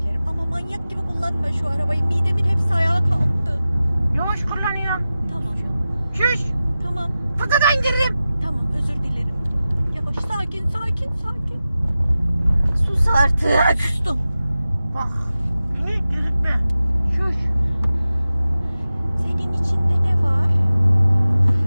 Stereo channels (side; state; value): both; inverted; correlation -0.94